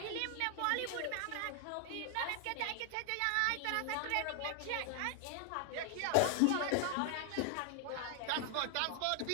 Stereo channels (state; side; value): different; both; correlation 0.00